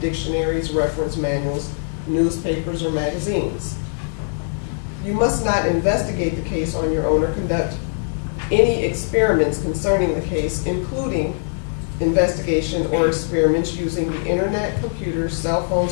dictionaries, reference manuals, newspapers, or magazines. You must not investigate the case on your own or conduct any experiments concerning the case, including investigation or experiments using the internet, computers, cell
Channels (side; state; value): right; silent; digital silence